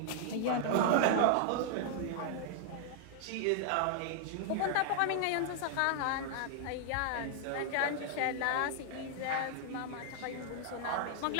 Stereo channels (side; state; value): both; different; correlation 0.00